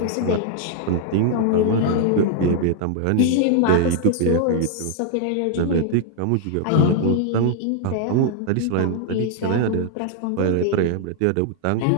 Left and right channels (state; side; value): different; both; correlation 0.00